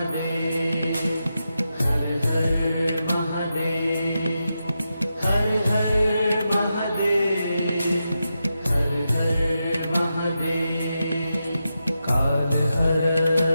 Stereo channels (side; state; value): both; inverted; correlation -0.88